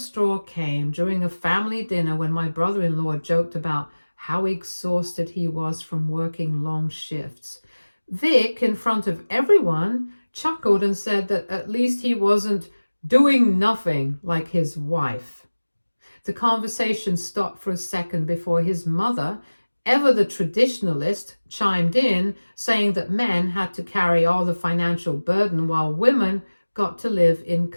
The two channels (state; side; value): inverted; both; correlation -1.00